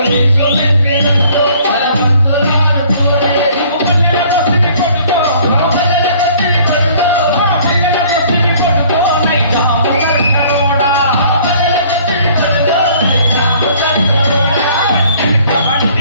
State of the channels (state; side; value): inverted; both; correlation -0.56